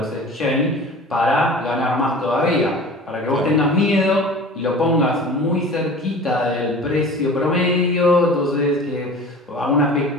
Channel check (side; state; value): both; normal; correlation 0.40